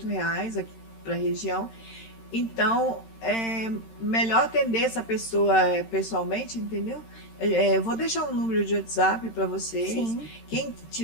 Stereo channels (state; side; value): late; right; 13 ms